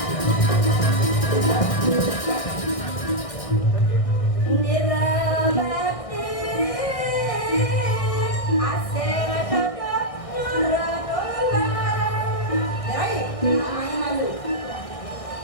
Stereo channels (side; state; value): right; late; 1.6 ms